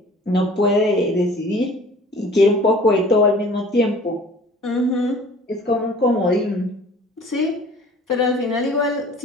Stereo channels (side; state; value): both; normal; correlation 0.48